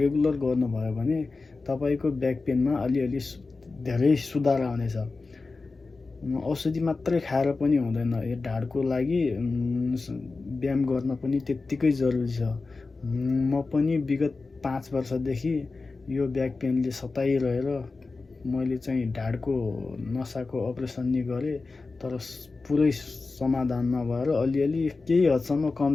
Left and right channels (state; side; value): quieter; right; 3.9 dB